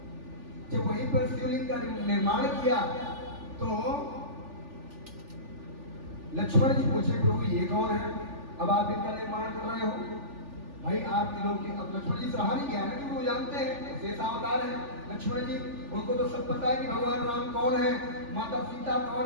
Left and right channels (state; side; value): late; left; 3.4 ms